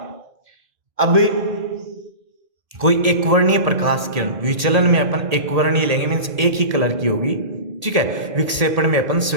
अब कोई एकवर्णीय प्रकाश किरण, विचलन में अपन एकवर्णीय लेंगे, मीन्स एक ही कलर की होगी। ठीक है, विक्षेपण में अपन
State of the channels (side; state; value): left; late; 1.8 ms